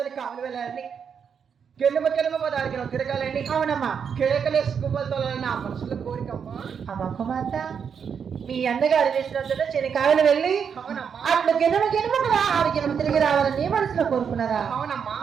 కావాలి వెళ్ళాలని కెలుమ పదానికి తిరగాలని. అవునమ్మా. కేకలేసి గువ్వలతోలని నా మనసులో కోరికమ్మా. అమ్మ కుమార్తె మీ అన్నగారు వేసినందులో చెనికాయలు వెళ్ళి అట్లు గిన్నెమ కదా 6 గిన్నెలు తిరిగి రావాలని నీ మనసులో కోరుకున్నారా? అవునమ్మా.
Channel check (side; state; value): left; quieter; 7.0 dB